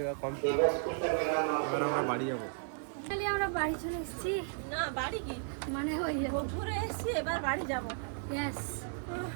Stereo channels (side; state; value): left; silent; 55 dB below the other